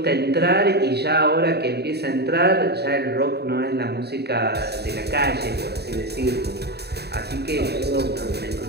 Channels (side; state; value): left; late; 0.48 ms